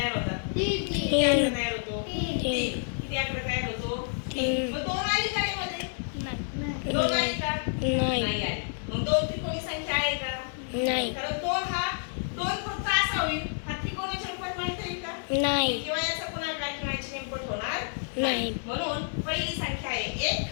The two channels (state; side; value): silent; right; digital silence